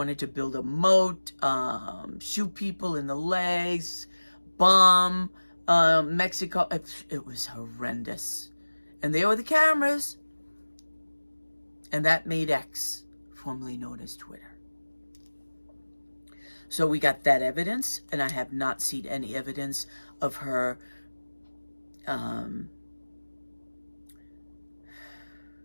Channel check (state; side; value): inverted; both; correlation -1.00